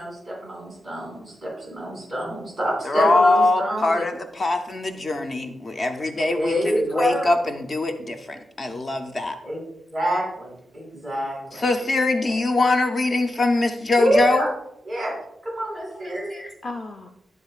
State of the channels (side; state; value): both; normal; correlation 0.89